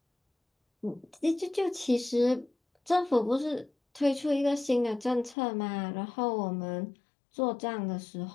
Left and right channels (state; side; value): drops out; right; at 5.4 s